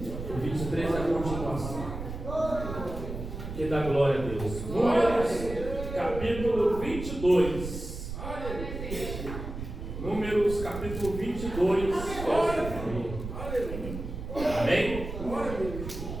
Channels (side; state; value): right; noise; rumble, 8 dB below the sound